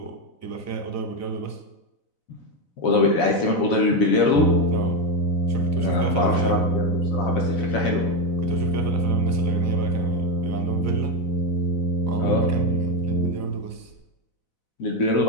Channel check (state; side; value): late; right; 4.0 ms